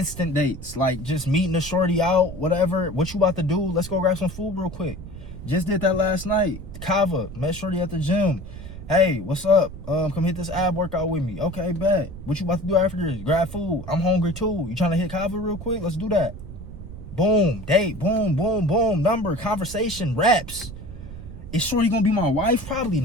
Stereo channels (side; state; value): right; noise; rumble, 12 dB below the sound